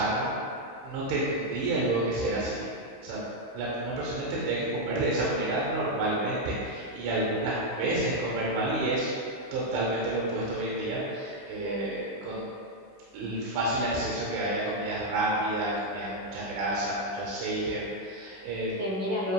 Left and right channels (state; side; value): late; left; 16 ms